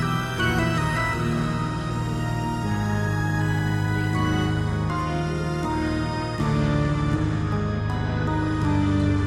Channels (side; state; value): both; identical; correlation 1.00